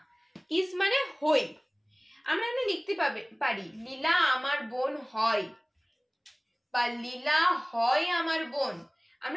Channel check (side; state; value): both; identical; correlation 1.00